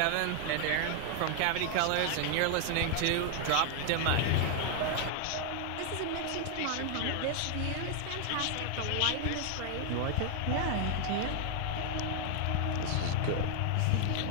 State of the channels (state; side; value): different; both; correlation 0.00